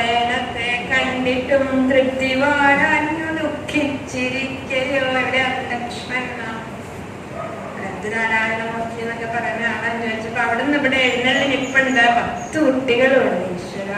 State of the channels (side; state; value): both; identical; correlation 1.00